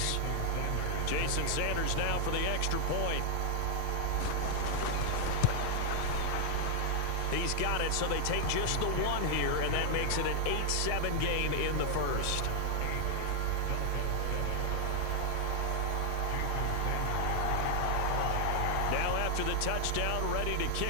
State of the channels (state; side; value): different; both; correlation 0.00